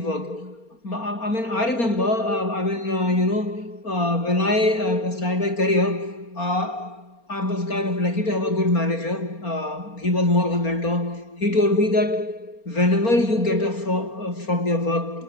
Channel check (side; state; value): right; late; 4.3 ms